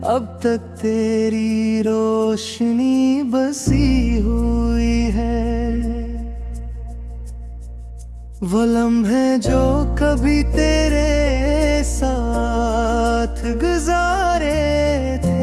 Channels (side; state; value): both; identical; correlation 1.00